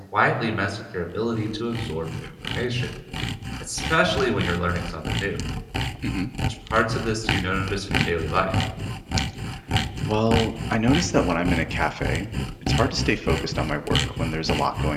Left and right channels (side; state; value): both; identical; correlation 1.00